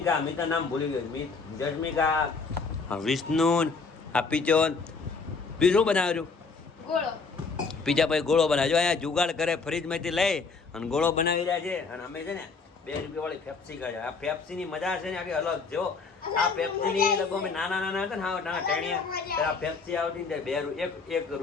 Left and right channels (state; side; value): quieter; right; 4.7 dB